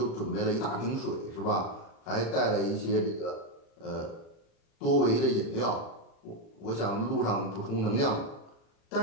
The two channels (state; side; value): late; right; 36 ms